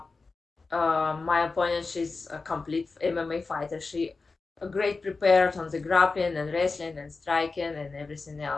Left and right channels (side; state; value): right; quieter; 4.0 dB